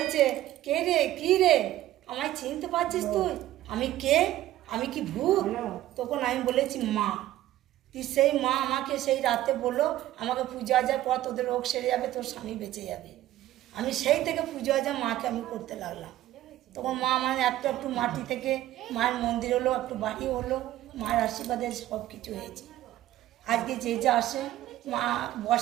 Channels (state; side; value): quieter; left; 14.4 dB